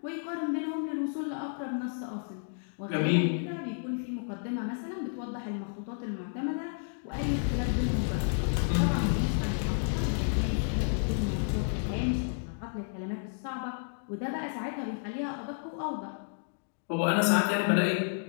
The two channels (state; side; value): silent; right; digital silence